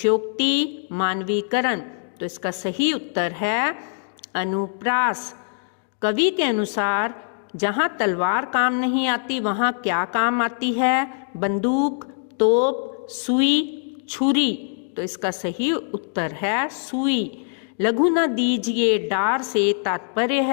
मानवीकरण। तो इसका सही उत्तर है अनुप्रास। कवि के अनुसार जहाँ तलवार काम नहीं आती वहाँ क्या काम आती है? बंदूक, तोप, सुई, छुरी। तो इसका सही उत्तर है सुई। लघु न दीजिए डार से तात्पर्य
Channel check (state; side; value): silent; right; digital silence